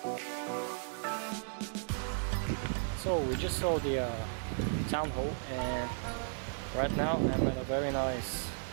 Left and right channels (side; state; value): left; silent; digital silence